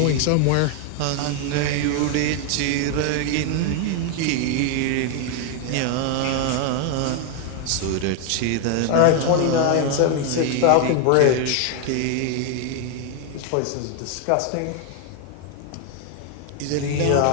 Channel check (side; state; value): both; different; correlation 0.00